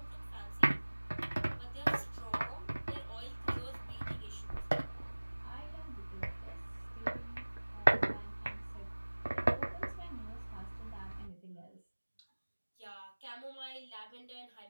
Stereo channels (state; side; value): inverted; both; correlation -1.00